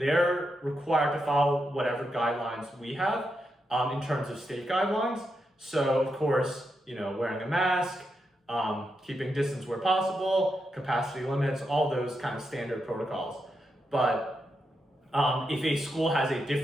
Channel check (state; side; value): normal; both; correlation 0.85